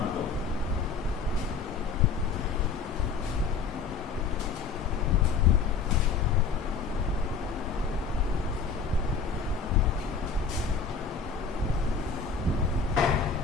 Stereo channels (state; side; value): quieter; right; 5.2 dB